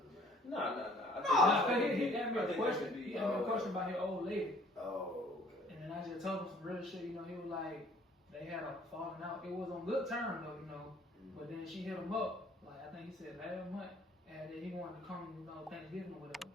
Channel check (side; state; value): both; normal; correlation 0.57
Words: man. Nah. Nah, he asked me I a think question. that could be, He asked me a question about his old lady. Oh, okay. And then I just told him some real shit, you know, he was like, they had a falling out. It was on good terms though, you know. But then she hit him up, like I think he said last month, and then he wanted to come, you know, Thanksgiving or whatever.